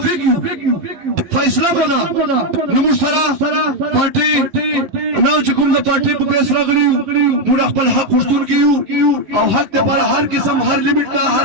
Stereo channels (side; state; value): left; late; 11 ms